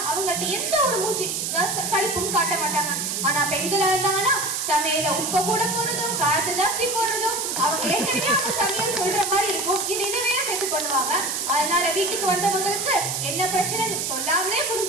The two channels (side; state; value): right; noise; hiss, 1 dB below the sound